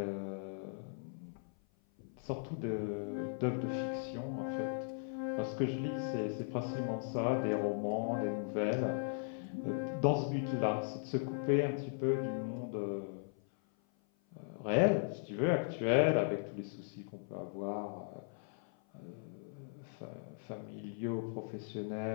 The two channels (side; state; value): right; silent; 52 dB below the other